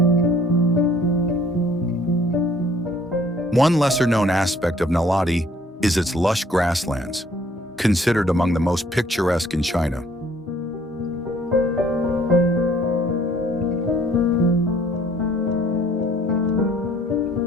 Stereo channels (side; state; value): both; normal; correlation 0.58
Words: One lesser-known aspect of Naledi is its lush grasslands, considered among the most picturesque in China.